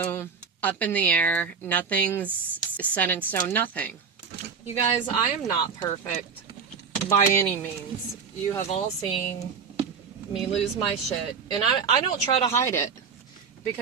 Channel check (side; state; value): left; quieter; 5.9 dB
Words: up in the air, nothing's set in stone, nothing. You guys, I am not perfect by any means. You have all seen me lose my shit, and I don't try to hide it,